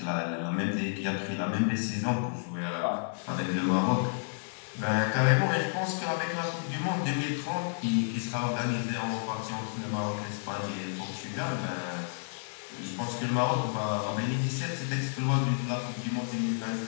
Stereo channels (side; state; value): right; silent; digital silence